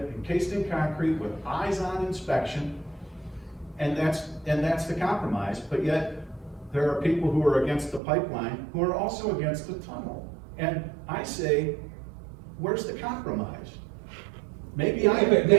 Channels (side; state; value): left; drops out; at 8.0 s